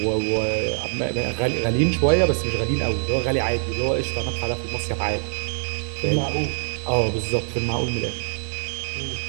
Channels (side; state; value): left; silent; digital silence